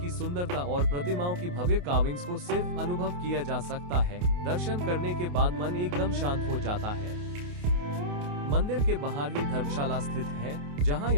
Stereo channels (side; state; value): left; late; 28 ms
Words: सुंदरता और प्रतिमाओं की भव्य कार्विंग्स को सिर्फ अनुभव किया जा सकता है। दर्शन करने के बाद मन एकदम शांत हो जाता है। मंदिर के बाहर ही धर्मशाला स्थित है, जहां